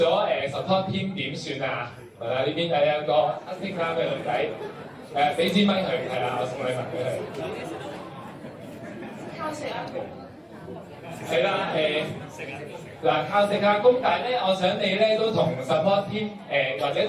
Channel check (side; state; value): both; identical; correlation 1.00